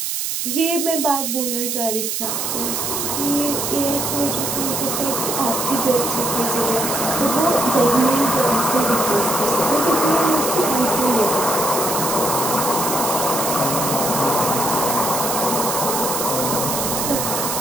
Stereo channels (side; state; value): right; noise; hiss, 1 dB below the sound